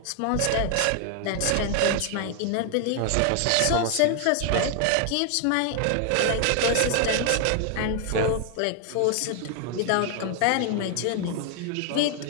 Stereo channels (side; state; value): both; different; correlation 0.00